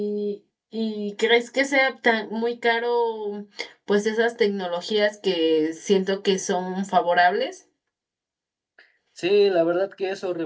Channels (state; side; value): identical; both; correlation 1.00